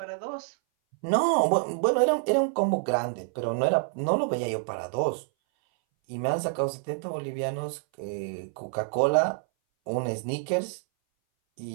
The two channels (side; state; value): left; silent; 58 dB below the other